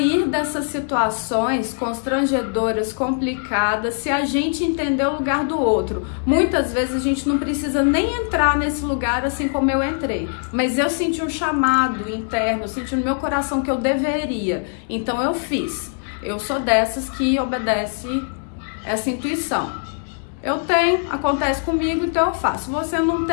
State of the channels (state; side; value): silent; right; 61 dB below the other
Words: dessas situações constrangedoras, complicadas, se a gente entender o lugar do outro. Muitas vezes a gente não precisa nem entrar nesse lugar assim como eu entrei, mas eu senti um chamado interno, eu senti no meu coração que eu deveria, então eu fiz. Eu sou dessas que obedece essa intuição. Eu tenho, acontece comigo, então eu faço. Você não